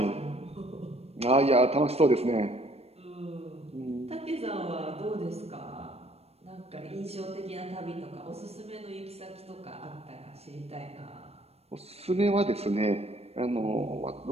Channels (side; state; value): left; late; 0.30 ms